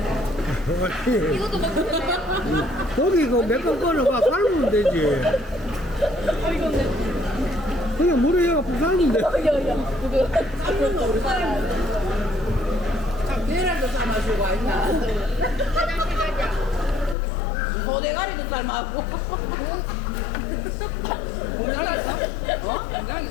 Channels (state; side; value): drops out; right; at 17.2 s